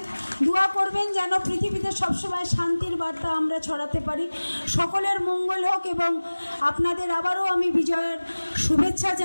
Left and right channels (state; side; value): inverted; both; correlation -1.00